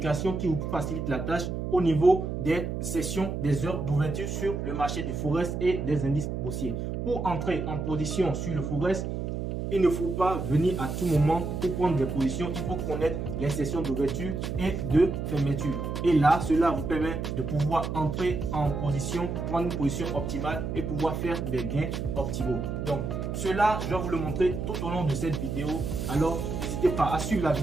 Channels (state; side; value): noise; right; hum, 3 dB below the sound